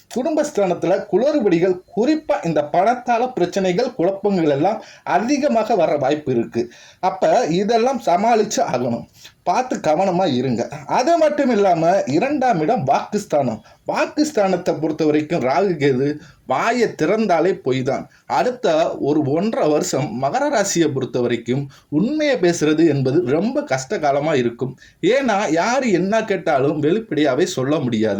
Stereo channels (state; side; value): identical; both; correlation 1.00